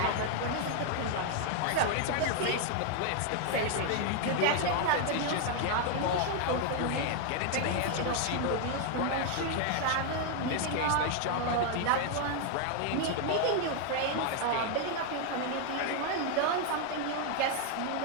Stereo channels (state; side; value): different; both; correlation 0.00